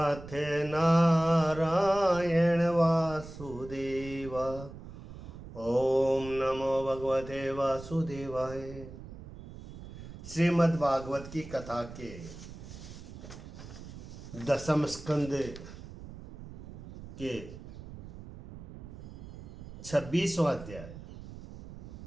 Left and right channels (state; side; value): noise; right; rumble, 14 dB below the sound